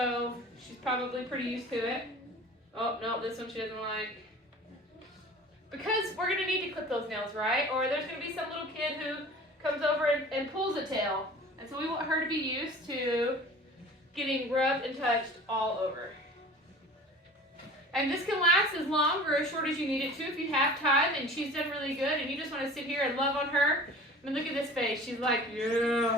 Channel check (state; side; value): normal; both; correlation 0.42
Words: she's probably pretty used to it. Oh, no, this one she doesn't like. Because we're going to need to clip those nails, right? Or there's going to be some little kid who comes over and pulls a tail. And so we want her to be used to getting rubbed and touched all over. And this can last as long or as short as you need it to if you have time and she's done really good and you just want to sit here and love on her. I mean, look at this face. She's like,